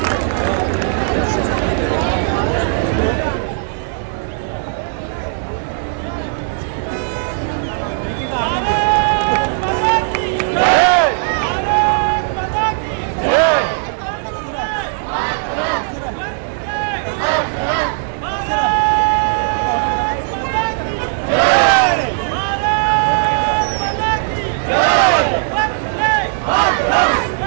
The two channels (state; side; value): silent; left; digital silence